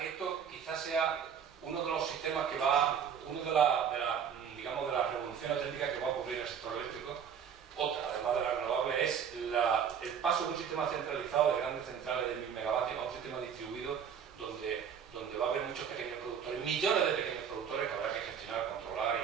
que esto quizás sea uno de los sistemas que va, digamos, de las revoluciones técnicas que va a ocurrir en el sector eléctrico. Otra, además de la renovable, es el paso de un sistema centralizado de grandes centrales de 1000 megavatios a un sistema distribuido donde va a haber muchos pequeños productores, millones de pequeños productores que habrá que gestionar, controlar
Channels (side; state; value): left; quieter; 7.7 dB